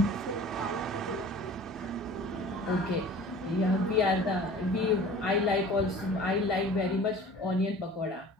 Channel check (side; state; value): both; normal; correlation 0.44